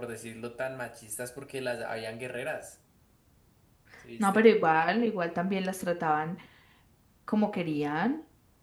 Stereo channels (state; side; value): identical; both; correlation 1.00